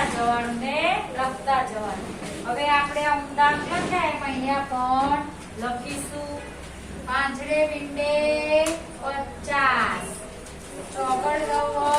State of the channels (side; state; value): both; identical; correlation 1.00